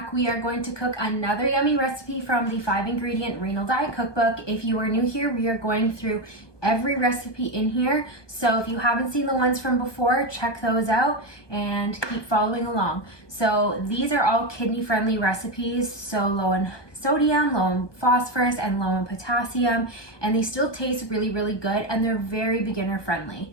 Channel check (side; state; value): right; late; 1.2 ms